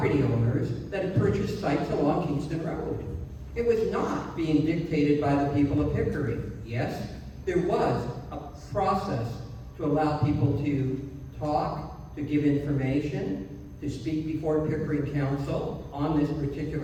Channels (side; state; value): both; identical; correlation 1.00